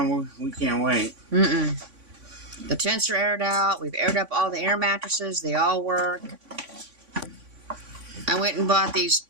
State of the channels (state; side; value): late; left; 3.5 ms